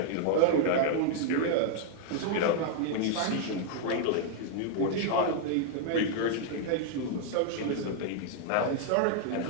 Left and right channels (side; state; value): both; different; correlation -0.01